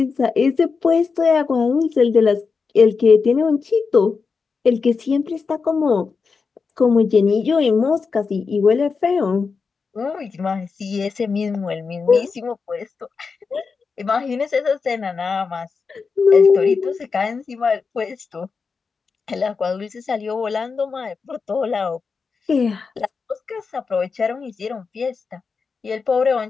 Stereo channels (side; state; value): right; quieter; 5.0 dB